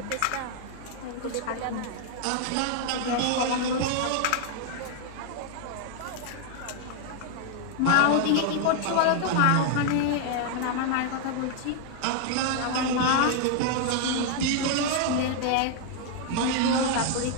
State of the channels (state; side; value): different; both; correlation 0.00